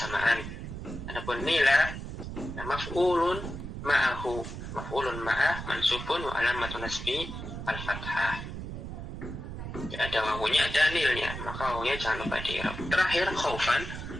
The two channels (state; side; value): noise; right; rumble, 8 dB below the sound